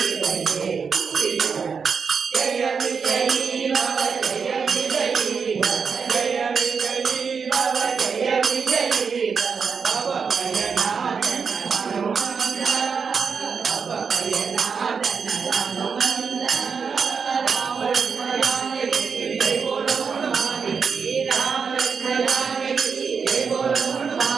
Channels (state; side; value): quieter; left; 5.8 dB